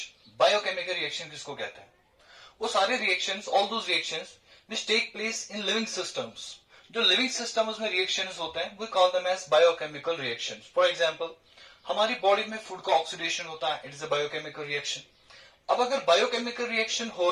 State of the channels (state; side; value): identical; both; correlation 1.00